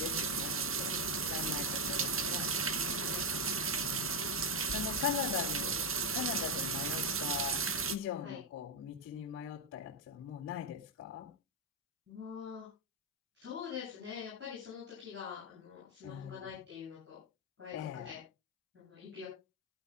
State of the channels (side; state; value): both; normal; correlation 0.01